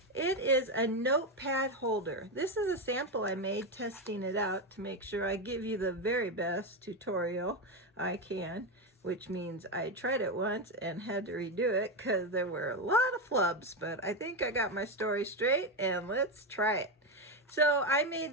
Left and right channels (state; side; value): normal; both; correlation 0.11